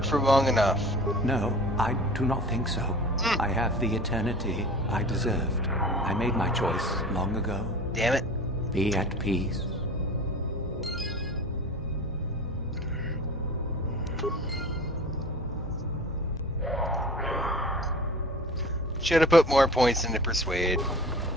for long enough. No, I do not think so. I have the eternity I deserved. I made my choice long ago. Damn it. Be at peace. Should have put more points into Persuade.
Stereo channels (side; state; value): both; normal; correlation 0.39